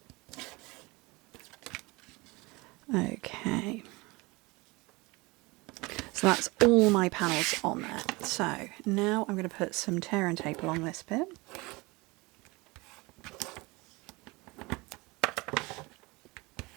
Okay. So that's all my panels on there. So now I'm going to put some tear and tape along this bit.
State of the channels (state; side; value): quieter; left; 24.3 dB